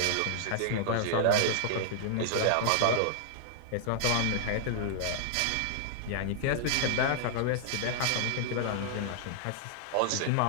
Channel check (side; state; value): both; different; correlation -0.01